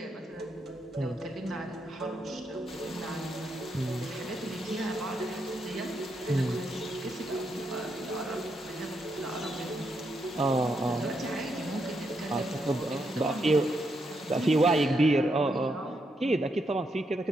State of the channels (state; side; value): normal; both; correlation 0.80